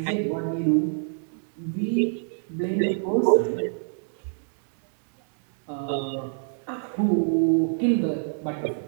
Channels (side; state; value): left; silent; digital silence